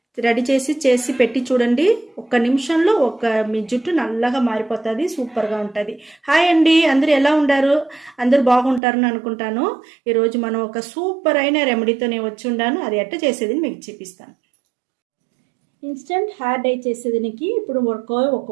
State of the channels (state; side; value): drops out; left; at 8.8 s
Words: రెడీ చేసి పెట్టి చూడండి. ఒక్క నిమిషంలో మీ జుట్టు నల్లగా మారిపోతుంది, సూపర్గా ఉంటుంది. హాయ్ అండి, అందరూ ఎలా ఉండారు? అందరూ బాగుంటారని అనుకుంటాను. ఈరోజు మనం ఒక సూపర్ అయిన రెమెడీతో నేను వచ్చి ఉండాను. అది ఎట్ట చేసేది మీకు చూపిస్తాను. ఇన్స్టెంట్ హెయిర్ డై చేసేదానికి ఇప్పుడు ఒక